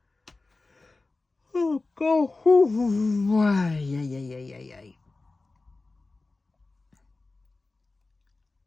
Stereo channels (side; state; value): right; quieter; 3.4 dB